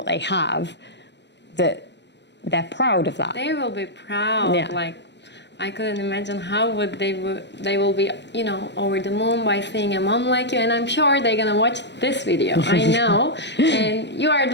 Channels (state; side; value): late; right; 0.51 ms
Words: they have, that they're proud of that. They will be proud. Yeah. Like, I couldn't imagine how would they will be, you know, over the moon by seeing a mom like you. And I'm sure they're gonna watch this video. I know. And you are